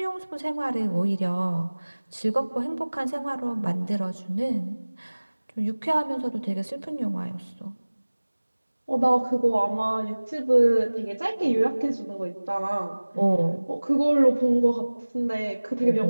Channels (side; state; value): both; inverted; correlation -1.00